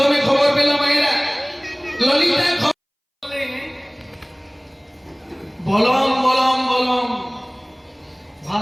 খবর পেল, মায়েরা ললিতা বলম বলম বলম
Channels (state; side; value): identical; both; correlation 1.00